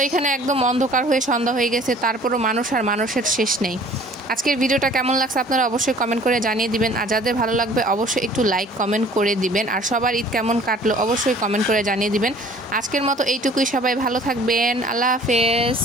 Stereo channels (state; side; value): normal; both; correlation 0.51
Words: এখানে একদম অন্ধকার হয়ে সন্ধ্যা হয়ে গেছে, তারপরও মানুষ আর মানুষের শেষ নেই। আজকের ভিডিওটা কেমন লাগছে আপনারা অবশ্যই কমেন্ট করে জানিয়ে দিবেন। আর যাদের ভালো লাগবে অবশ্যই একটু লাইক কমেন্ট করে দিবেন। আর সবার ঈদ কেমন কাটলো অবশ্যই কমেন্ট করে জানিয়ে দিবেন। আজকের মতো এইটুকুই, সবাই ভালো থাকবেন, আল্লাহ হাফেজ।